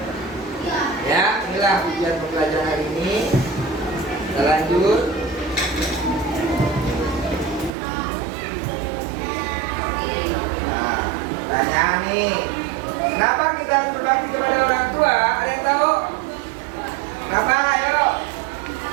Ya, inilah tujuan pembelajaran hari ini. Kita lanjut. Nah, tanya nih, kenapa kita harus berbakti kepada orang tua? Ada yang tahu? Kenapa? Ayo.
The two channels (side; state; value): left; drops out; at 7.7 s